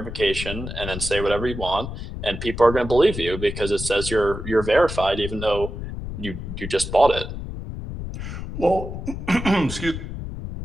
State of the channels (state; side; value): noise; left; rumble, 7 dB below the sound